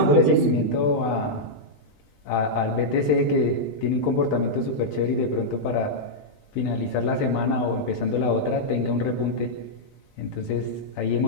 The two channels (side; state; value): right; late; 20 ms